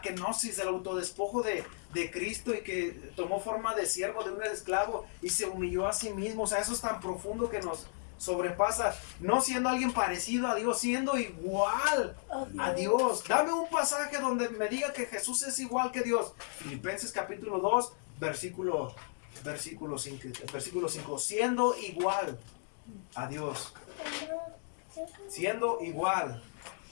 del autodespojo de Cristo, y que tomó forma de siervo, de un esclavo, y se humilló a sí mismo. O sea, eso es tan profundo que nos sobrepasa. No siendo alguien parecido a Dios, siendo igual a Dios. Dame un pasaje donde me diga que Jesús es igual que Dios. Filipenses capítulo 2, versículo 5. Siendo igual a Dios. Siendo igual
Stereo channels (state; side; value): silent; right; digital silence